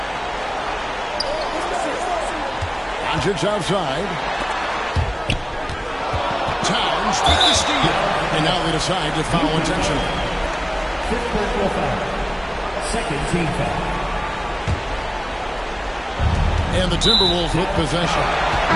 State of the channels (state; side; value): identical; both; correlation 1.00